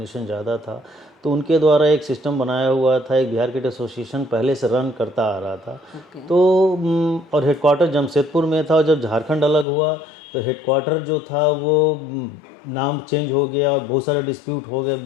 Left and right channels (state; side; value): drops out; right; at 9.7 s